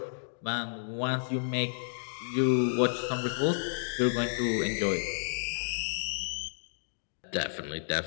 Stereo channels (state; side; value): silent; right; digital silence